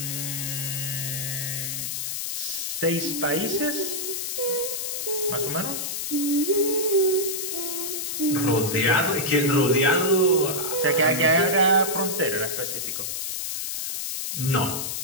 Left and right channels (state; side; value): noise; left; hiss, 3 dB below the sound